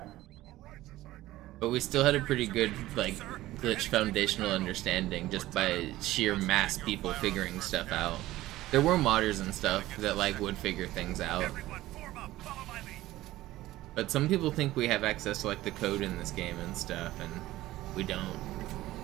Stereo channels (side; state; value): left; quieter; 16.2 dB